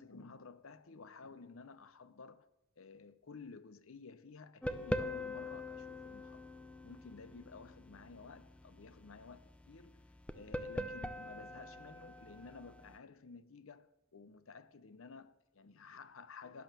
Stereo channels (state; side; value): normal; both; correlation 0.68